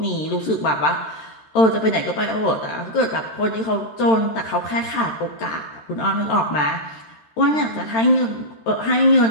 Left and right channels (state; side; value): late; right; 13 ms